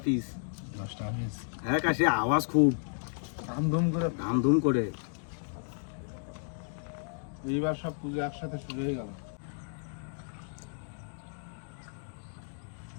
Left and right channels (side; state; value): right; silent; digital silence